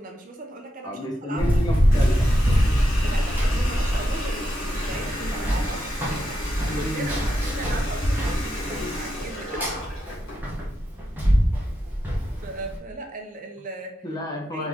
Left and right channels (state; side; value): normal; both; correlation 0.85